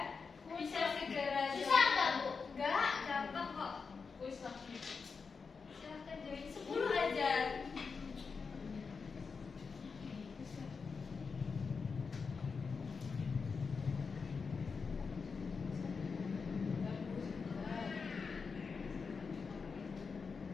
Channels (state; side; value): quieter; right; 5.1 dB